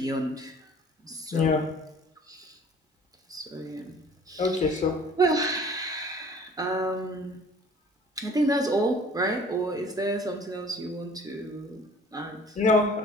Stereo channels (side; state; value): both; normal; correlation 0.50